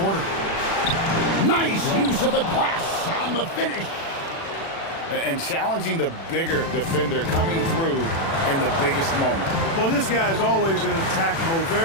Nice use of the glass on the finish. And challenging the bigger defender coming through in the biggest moment. Well, this guy is always in attack mode,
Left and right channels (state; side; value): late; right; 36 ms